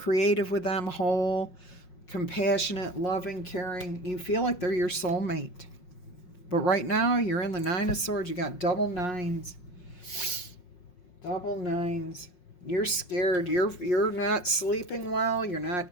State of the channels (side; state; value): right; late; 5.5 ms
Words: with them, whole, compassionate, loving, caring. You feel like they're your soulmate. But right now, you're in the Nine of Swords. You got double nines. Double nines. You're scared. You're not sleeping well. You're not